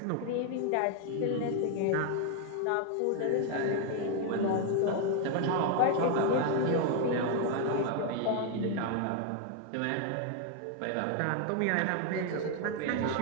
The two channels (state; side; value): different; both; correlation 0.01